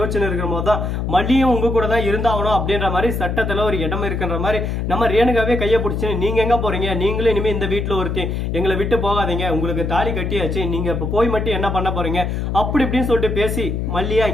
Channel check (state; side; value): noise; left; hum, 2 dB below the sound